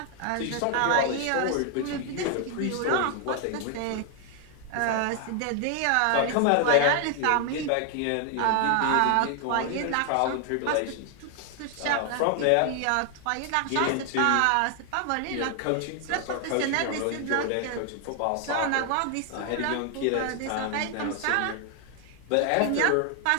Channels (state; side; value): different; both; correlation 0.00